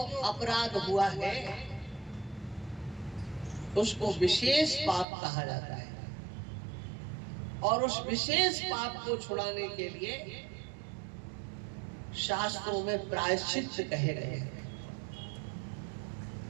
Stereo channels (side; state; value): left; drops out; at 5.1 s